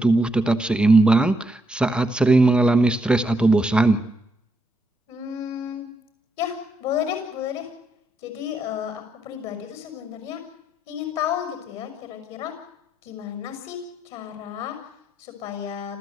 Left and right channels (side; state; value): both; normal; correlation 0.80